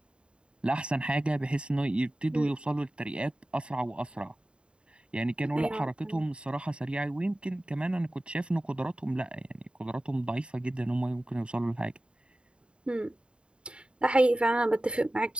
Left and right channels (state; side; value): late; left; 0.053 ms